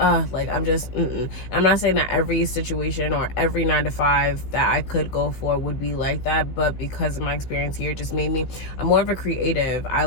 I'm not saying that every situation or every 9 to 5 that I could go for would be like that, but because of my experience here, it just made me, I'm more of a creative. I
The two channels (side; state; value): right; late; 15 ms